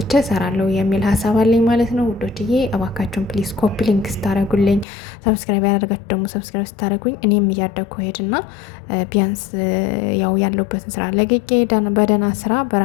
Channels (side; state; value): right; drops out; at 4.9 s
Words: እሰራለሁ የሚል ሀሳብ አለኝ ማለት ነው ውዶችዬ። እባካችሁን ፕሊዝ ኮፒ ሊንክ ስታደርጉልኝ፣ ሰብስክራይብ ያደረጋችሁ ደግሞ ሰብስክራይብ ስታደርጉኝ እኔም እያደግኩ ሄድና ቢያንስ ያው ያለሁበትን ስራ ለቅቄ በደና ስራ